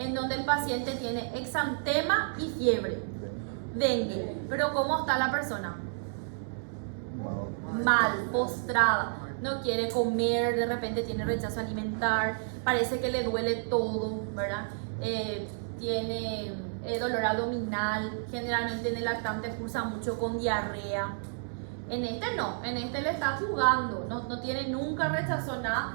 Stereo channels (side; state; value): left; silent; digital silence